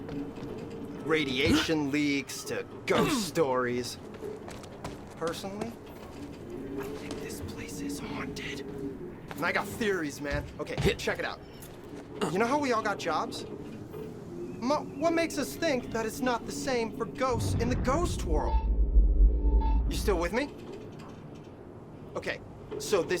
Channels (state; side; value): identical; both; correlation 1.00